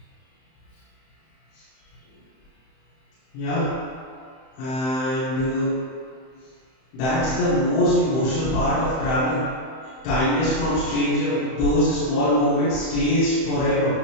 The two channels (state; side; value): late; right; 31 ms